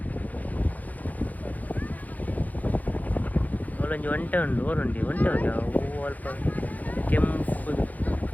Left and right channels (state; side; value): late; right; 0.079 ms